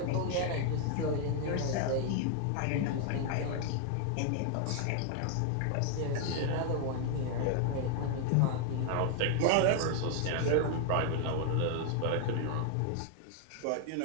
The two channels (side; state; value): both; different; correlation 0.00